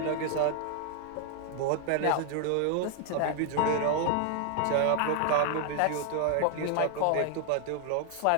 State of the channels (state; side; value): different; both; correlation 0.00